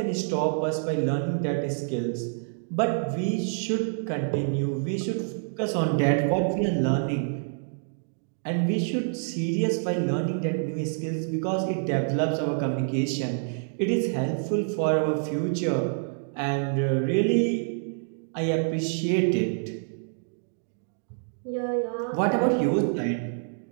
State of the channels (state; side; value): silent; left; digital silence